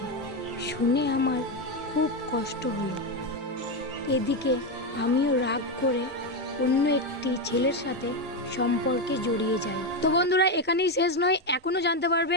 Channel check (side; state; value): both; normal; correlation 0.10